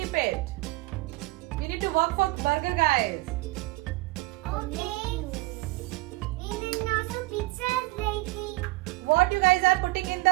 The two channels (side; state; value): left; quieter; 21.3 dB